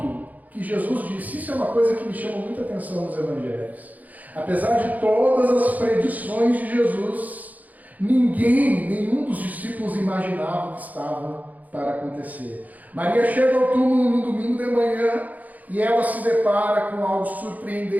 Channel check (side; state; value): left; late; 0.079 ms